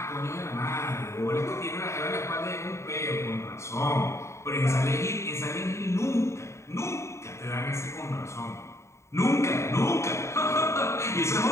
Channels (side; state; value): right; late; 0.14 ms